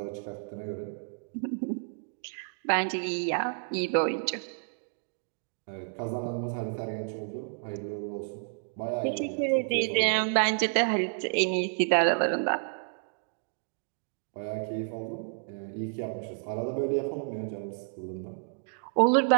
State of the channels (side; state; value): left; silent; digital silence